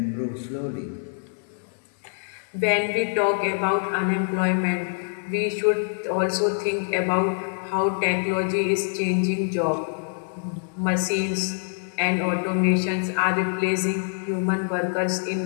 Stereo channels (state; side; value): silent; right; digital silence